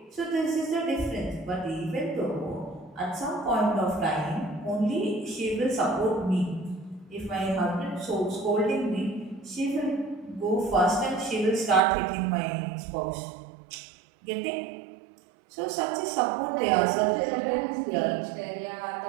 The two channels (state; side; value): drops out; left; at 11.8 s